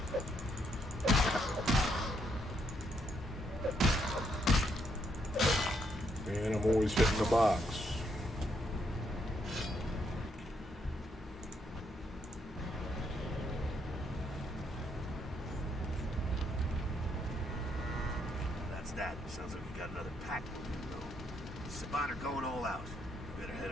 And I'm always hitting the box. That's that. Sounds like we got another pack moving, though. Sabata going all out. We better head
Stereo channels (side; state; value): both; normal; correlation 0.75